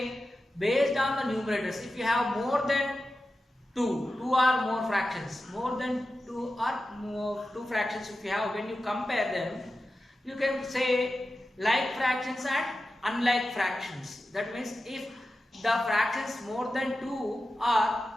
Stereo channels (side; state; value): both; normal; correlation 0.93